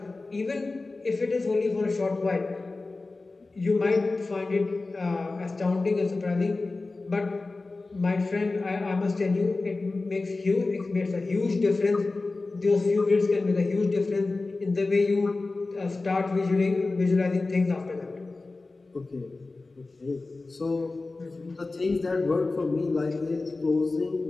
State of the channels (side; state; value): right; quieter; 3.5 dB